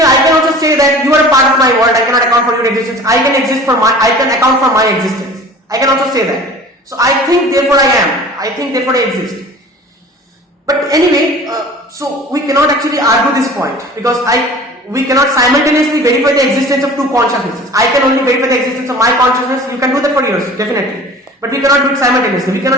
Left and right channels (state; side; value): normal; both; correlation 0.43